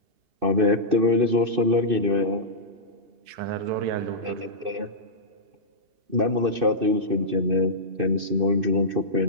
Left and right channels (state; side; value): late; left; 2.6 ms